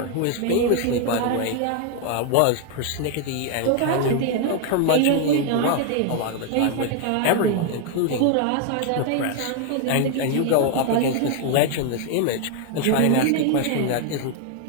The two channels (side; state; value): both; different; correlation 0.01